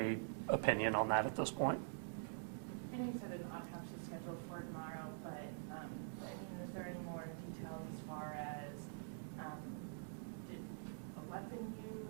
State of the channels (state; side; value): silent; left; digital silence